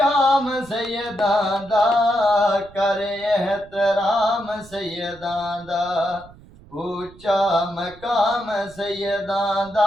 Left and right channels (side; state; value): right; noise; rumble, 23 dB below the sound